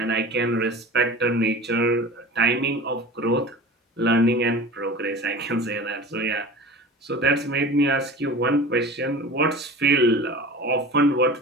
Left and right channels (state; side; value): normal; both; correlation 0.37